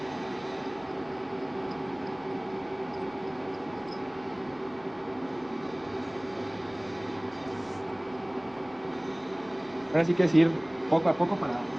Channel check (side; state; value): right; noise; rumble, 27 dB below the sound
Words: Ahora sí que es ir poco a poco para ir